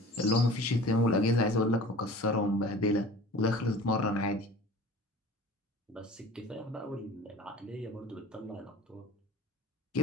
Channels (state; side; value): normal; both; correlation 0.43